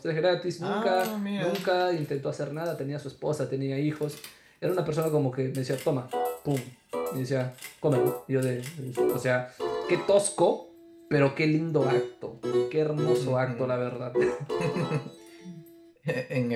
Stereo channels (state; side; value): identical; both; correlation 1.00